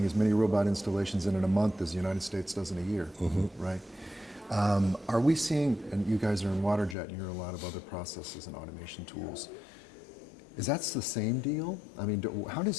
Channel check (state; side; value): drops out; right; at 7.0 s